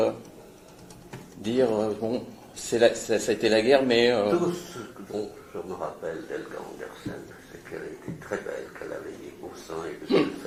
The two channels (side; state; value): both; identical; correlation 1.00